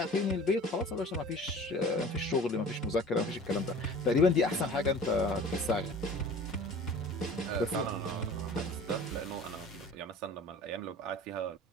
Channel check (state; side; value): normal; both; correlation 0.43